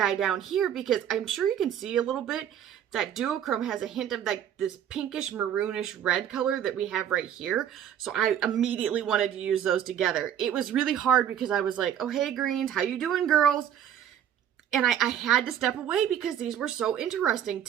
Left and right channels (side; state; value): left; quieter; 9.7 dB